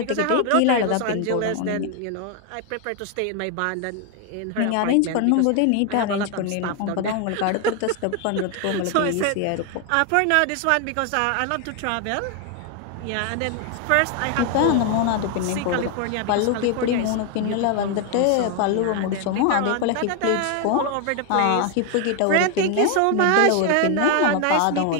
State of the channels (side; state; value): both; different; correlation 0.01